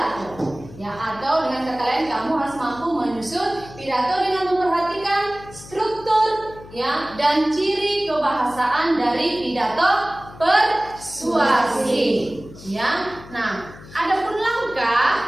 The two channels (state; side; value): noise; left; hum, 18 dB below the sound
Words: Ya, atau dengan kata lain kamu harus mampu menyusun pidato dengan memperhatikan struktur ya dan ciri kebahasaan dari pidato persuasif. Ya. Nah, adapun